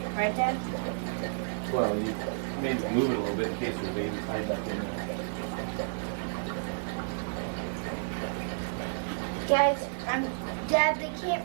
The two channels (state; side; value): silent; left; digital silence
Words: Right, Dad? Well, you maybe move it a little bit in case there's babies hide back in there. Guys, Dad, they